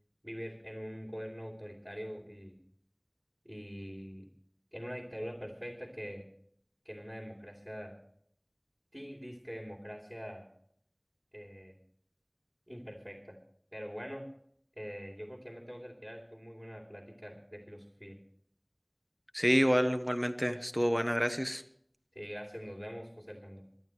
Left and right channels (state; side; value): identical; both; correlation 1.00